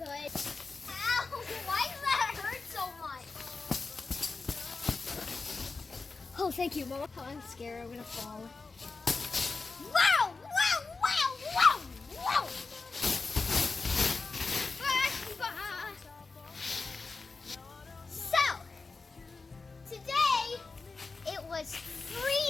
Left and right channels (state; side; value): quieter; right; 4.1 dB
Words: Ow, why does that hurt so much? Oh, thank you, Mama. Oh, I'm scared. I'm gonna fall. Wow! Wow! Wow! Wow! Wow! So, today it was